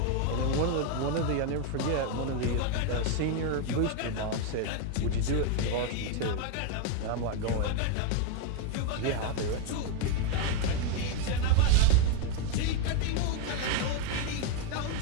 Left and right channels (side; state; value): both; different; correlation 0.01